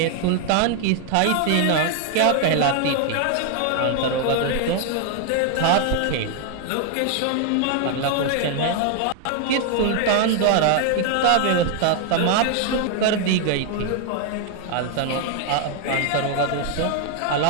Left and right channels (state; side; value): different; both; correlation 0.01